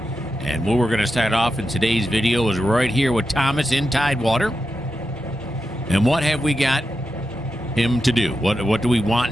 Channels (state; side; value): normal; both; correlation 0.89